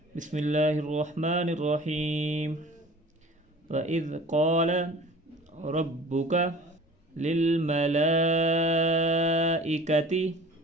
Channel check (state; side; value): normal; both; correlation 0.44